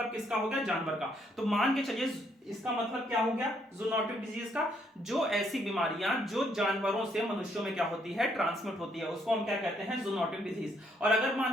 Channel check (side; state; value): both; normal; correlation 0.71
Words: किसका हो गया, जानवर का। तो मान के चलिए इसका मतलब क्या हो गया, जूनोटिक डिजीज का, जो ऐसी बीमारियां जो जानवरों से मनुष्यों में क्या होती है, ट्रांसमिट होती है, उसको हम क्या कहते हैं, जूनोटिक डिजीज। और अगर